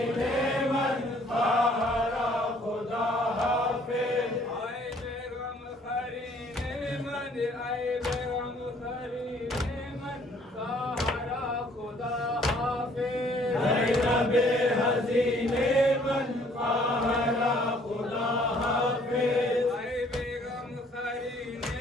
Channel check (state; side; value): normal; both; correlation 0.60